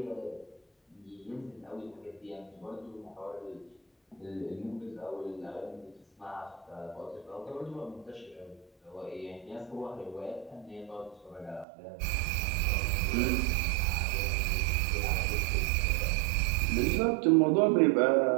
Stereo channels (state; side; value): drops out; left; at 11.7 s